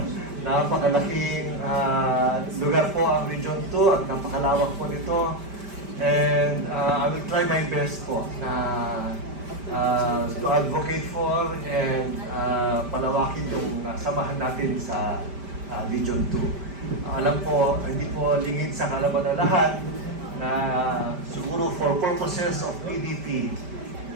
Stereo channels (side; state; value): left; late; 5.1 ms